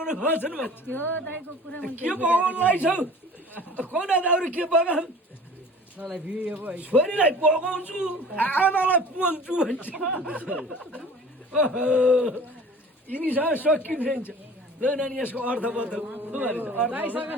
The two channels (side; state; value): both; normal; correlation 0.44